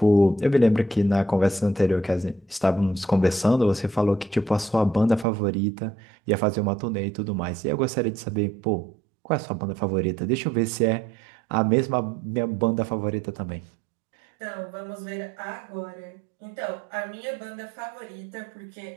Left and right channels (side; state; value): left; drops out; at 5.2 s